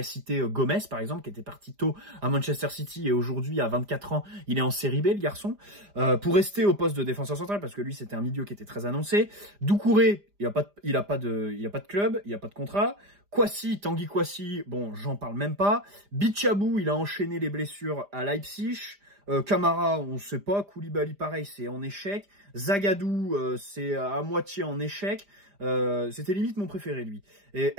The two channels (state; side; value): late; left; 5.0 ms